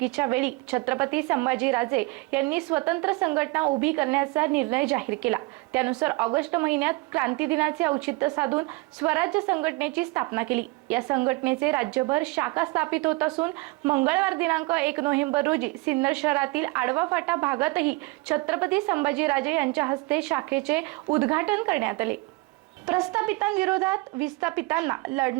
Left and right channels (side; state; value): left; quieter; 24.5 dB